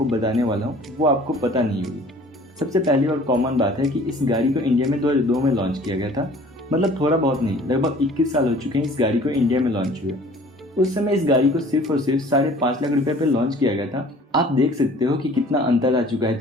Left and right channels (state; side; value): normal; both; correlation 0.50